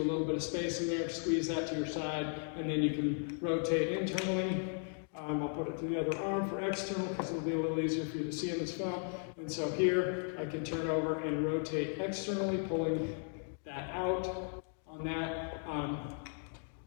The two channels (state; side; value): silent; right; 54 dB below the other